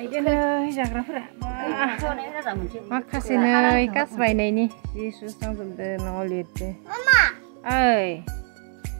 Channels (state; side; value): silent; left; 56 dB below the other